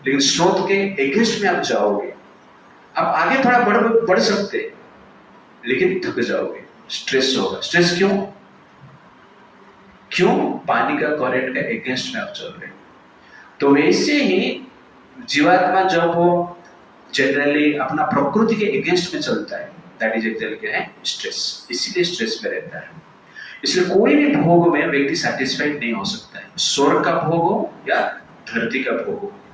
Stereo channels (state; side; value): identical; both; correlation 1.00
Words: लेकिन स्रोत के अगेंस्ट में आप जाओगे, आप आगे थोड़ा बढ़ सकते हैं, लेकिन थक जाओगे, स्ट्रेस होगा। स्ट्रेस क्यों? पानी का करंट का अगेंस्ट में आप चल रहे हैं। तो वैसे ही जीवात्मा जब वो जनरली अपना प्रकृति के अगेंस्ट में चलता है, दैट इज एक्चुअली क्या है? स्ट्रेस। इसीलिए स्ट्रेस में रहता है। इसलिए कोई भी भोग में व्यक्ति सैटिस्फाइड नहीं हो सकता है। स्वर्ग का भोग हो या धरती का भोग हो,